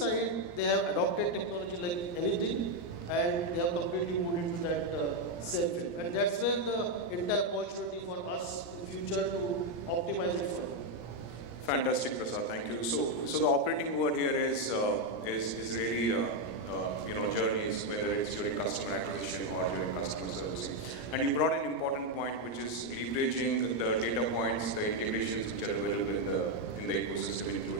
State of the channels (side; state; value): right; late; 17 ms